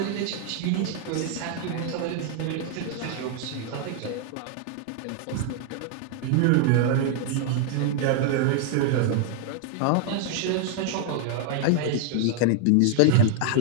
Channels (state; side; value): different; both; correlation 0.00